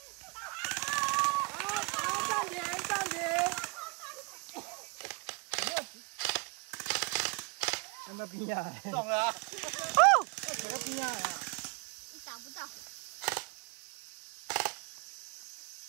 那边呀，中了啊！哦，左边啊，你打不到。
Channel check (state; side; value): quieter; left; 30.9 dB